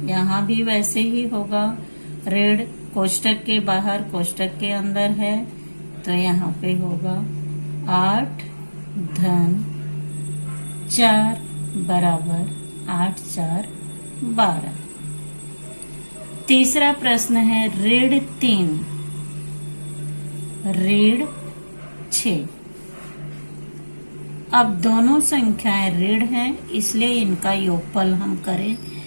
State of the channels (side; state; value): both; inverted; correlation -1.00